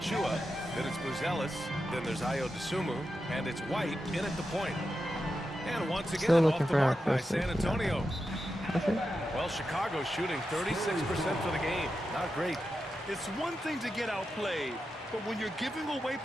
Then it's Buzelis. Then there's Ayo Dosunmu. And it's White in at the point. And once again, off the mark by San Antonio. Well, Chicago's shooting 36% for the game. Not great. It's one thing to get outplayed, but when you're giving away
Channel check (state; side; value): normal; both; correlation 0.89